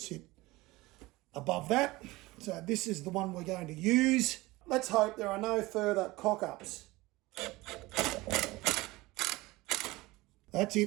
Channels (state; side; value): quieter; left; 20.5 dB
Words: sit above that. So this is the one we're going to use. Let's hope there are no further cock-ups. That's